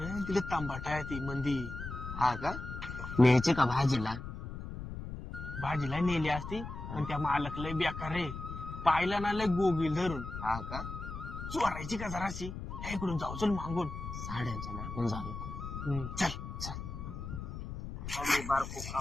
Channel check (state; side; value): noise; left; rumble, 8 dB below the sound